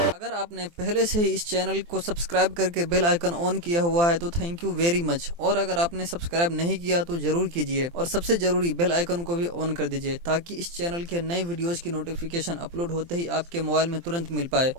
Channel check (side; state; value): left; late; 23 ms